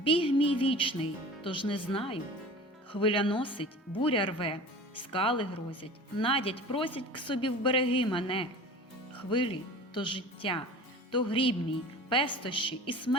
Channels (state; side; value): normal; both; correlation 0.39